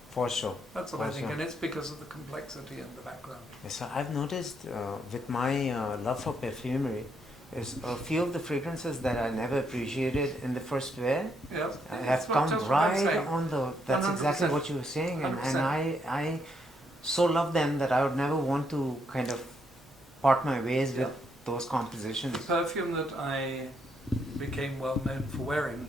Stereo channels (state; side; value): normal; both; correlation 0.75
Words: For sure. That's what I For think, sure. and it's because of the complexity in the background. Yes, so I've noticed with my love for perfumery, is a few of the fragrances that I never appreciated in the first wear Yeah, have come right on the. That's 100%. exactly what you were saying, and 100%. I so love them that I would never want to kind of part my ways with those compositions. The perfume that I became well known for wearing